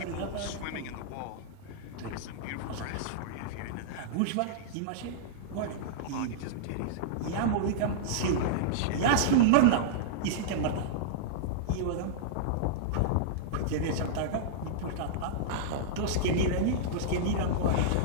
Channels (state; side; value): different; both; correlation -0.02